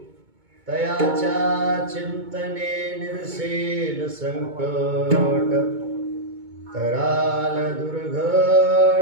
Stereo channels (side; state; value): left; late; 2.2 ms